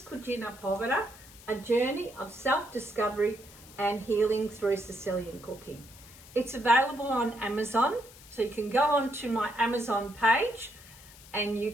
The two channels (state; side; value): noise; left; hiss, 20 dB below the sound